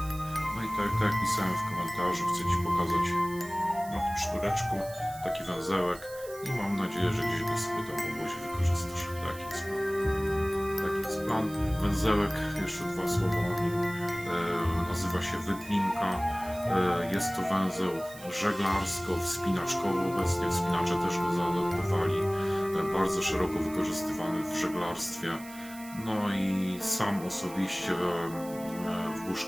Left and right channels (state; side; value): noise; right; hiss, 17 dB below the sound